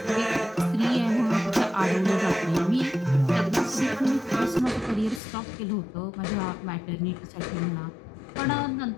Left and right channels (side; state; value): right; drops out; at 5.2 s